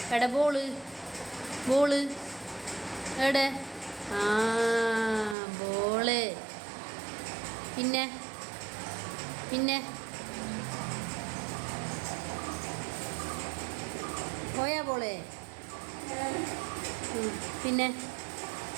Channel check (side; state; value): left; drops out; at 5.4 s